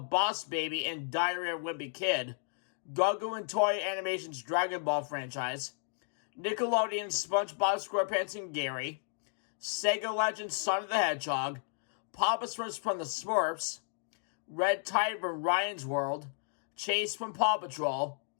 Boss Baby and Diary of a Wimpy Kid, Gugu and Toei Animation's Dragon Ball franchise, Nickelodeon's SpongeBob SquarePants and Gary, Sega Legends Sonic the Hedgehog, Papa from the Smurfs, Red Tide from Ryan's World, Chase from Paw Patrol,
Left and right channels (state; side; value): silent; right; digital silence